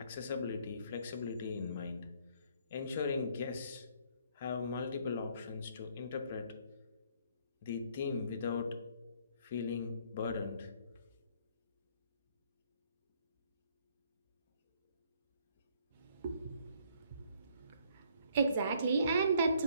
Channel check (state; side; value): inverted; both; correlation -0.64